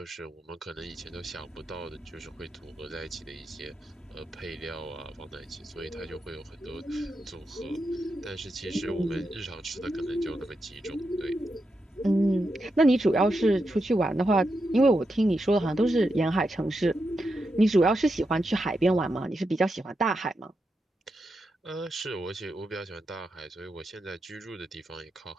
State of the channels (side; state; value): both; normal; correlation 0.86